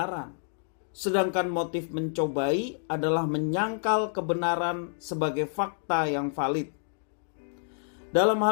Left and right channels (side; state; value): right; silent; digital silence